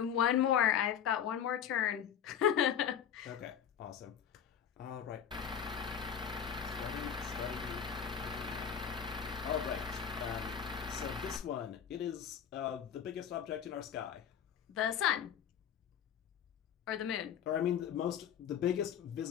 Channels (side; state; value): right; quieter; 8.7 dB